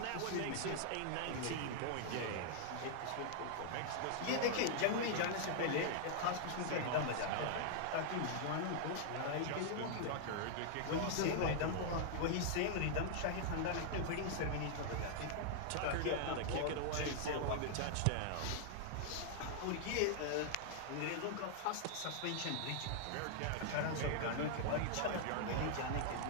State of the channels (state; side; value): different; both; correlation -0.01